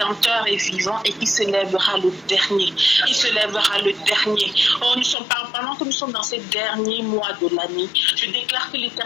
est vivant et qu'il se lèvera le dernier. Il se lèvera le dernier. Oh, pendant que nous sommes dans ces derniers mois de l'année, je déclare que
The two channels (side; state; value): right; drops out; at 5.2 s